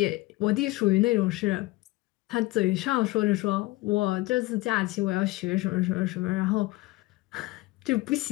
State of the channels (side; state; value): right; quieter; 20.6 dB